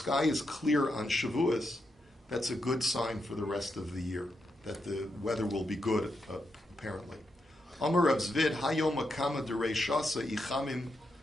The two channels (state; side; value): normal; both; correlation 0.84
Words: is clear on Shavuos, that's a good sign for the rest of the year, that the weather will be good, apparently. Amar Rav Zvid, Hayom Akama Derei Shasa Ichamim